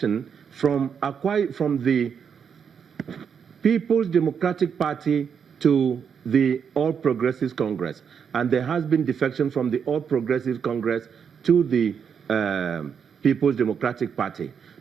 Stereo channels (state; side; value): quieter; left; 7.1 dB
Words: from the People's Democratic Party to the All Progressives Congress, and there has been defection from the All Progressives Congress to the People's Democratic Party.